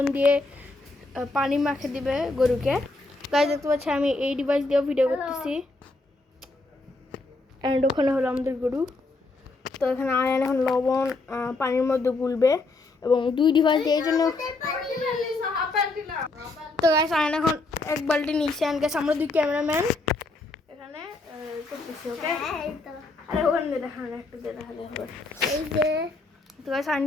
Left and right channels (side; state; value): right; quieter; 3.3 dB